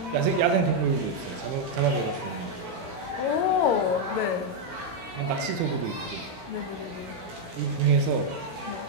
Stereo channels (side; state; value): left; late; 16 ms